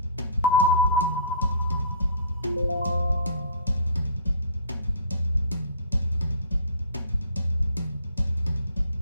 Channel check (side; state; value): both; inverted; correlation -0.49